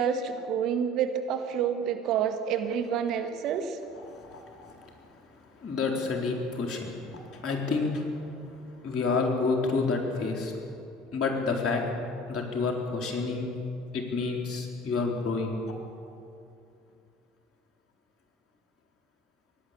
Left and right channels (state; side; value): normal; both; correlation 0.44